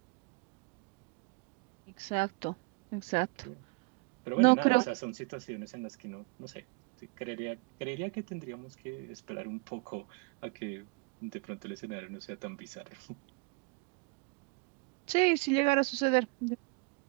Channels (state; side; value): quieter; left; 29.7 dB